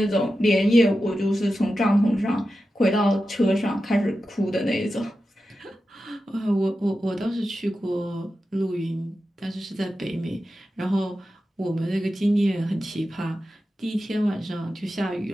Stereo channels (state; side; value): normal; both; correlation 0.92